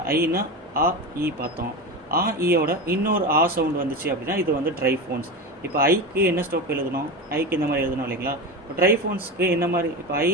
ஐனா ஆ இ பார்த்தோம். ஆ ஈயோட இன்னொரு ஆ சவுண்டு வந்துச்சு அப்படின்னா இது வந்து ட்ரைஃபோன்ஸ். இப்போ ஐக்கு என்ன ஸ்ட்ரோக் எழுதணும், ஐக்கு இந்த மாதிரி எழுதணும் இல்லைங்களா. இப்போ ட்ரைஃபோன்ஸ்க்கு என்ன மாதிரி, இப்போ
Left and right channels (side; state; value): both; normal; correlation 0.23